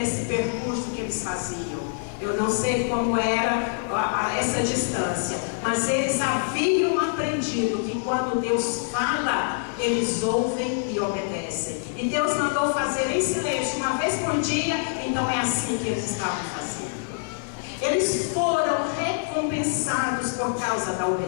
percurso que eles faziam. Eu não sei como era essa distância, mas eles haviam aprendido que quando Deus fala, eles ouvem e obedecem. E Deus mandou fazer em silêncio 1 vez por dia, então é assim que eles estavam fazendo. Eles foram recompensados por causa da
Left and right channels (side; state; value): right; silent; 61 dB below the other